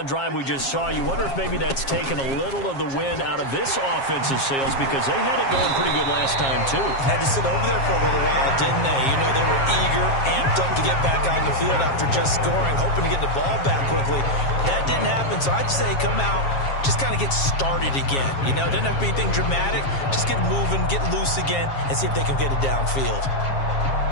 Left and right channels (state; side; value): late; right; 7.4 ms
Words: drive we just saw, you wonder if maybe that's taken a little of the wind out of this offensive sails, because they had it going pretty good last time, too. Had to sit over there for a little while, didn't they? You know, they were eager, amped up to get back on the field after just scoring, hoping to get the ball back quickly. That didn't happen, so I'd say come out, just kind of get started again. You know, it doesn't have to be anything dramatic. Just get moving, get loose again, and see if they can get it downfield.